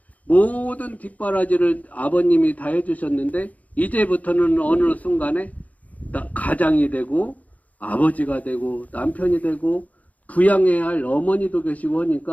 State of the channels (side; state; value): right; late; 0.073 ms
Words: 모든 뒷바라지를 아버님이 다 해주셨는데 이제부터는 어느 순간에 가장이 되고 아버지가 되고 남편이 되고 부양해야 할 어머니도 계시고